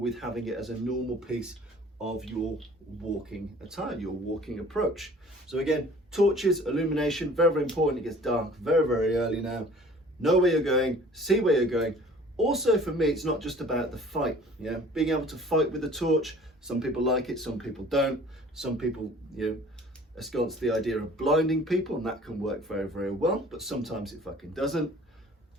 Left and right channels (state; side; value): normal; both; correlation 0.49